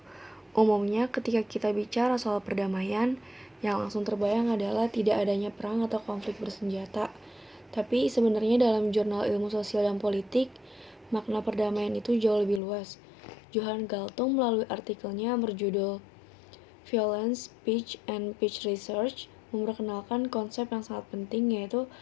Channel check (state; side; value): drops out; right; at 12.6 s